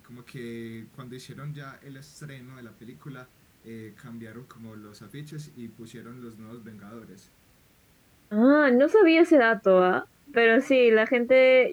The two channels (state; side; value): identical; both; correlation 1.00